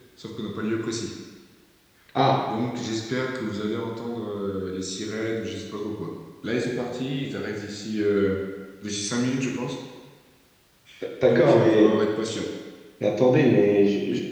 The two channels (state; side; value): identical; both; correlation 1.00